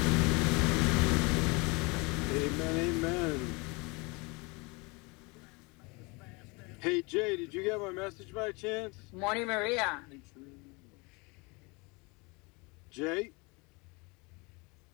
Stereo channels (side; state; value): right; quieter; 27.7 dB